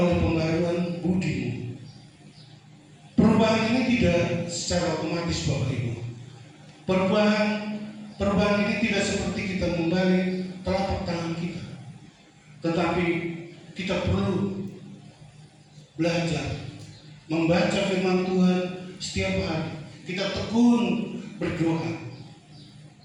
pembaruan budimu. Perubahan ini tidak secara otomatis, Bapak Ibu. Perubahan ini tidak seperti kita membalik telapak tangan kita, tetapi kita perlu belajar membaca firman Tuhan setiap hari. Kita tekun berdoa,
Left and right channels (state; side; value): identical; both; correlation 1.00